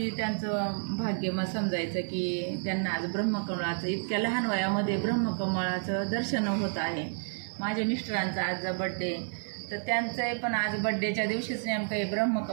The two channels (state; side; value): silent; left; 58 dB below the other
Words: त्यांचं भाग्य मग समजायचं की त्यांना आज ब्रह्मकमळाचं इतक्या लहान वयामध्ये ब्रह्मकमळाचं दर्शन होत आहे। माझ्या मिस्टरांचा आज बड्डे, तर त्यांचं पण आज बड्डेच्या दिवशीच नेमकं हे